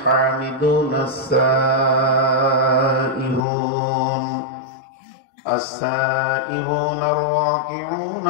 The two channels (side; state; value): right; drops out; at 3.4 s